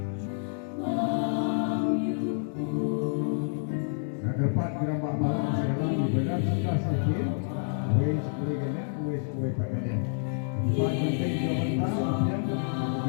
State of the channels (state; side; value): silent; right; digital silence